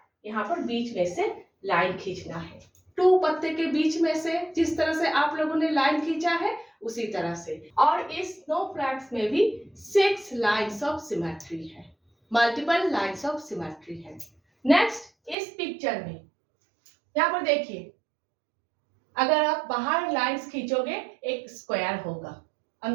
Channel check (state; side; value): drops out; left; at 15.4 s